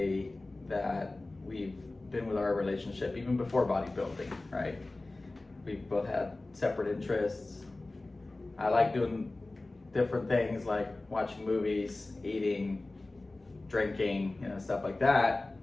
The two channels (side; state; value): right; quieter; 3.0 dB